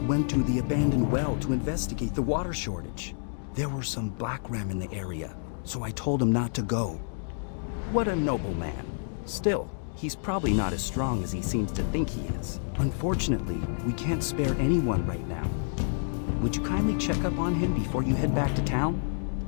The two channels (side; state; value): right; silent; digital silence